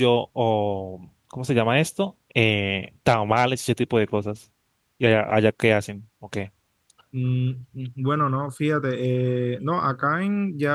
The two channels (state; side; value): identical; both; correlation 1.00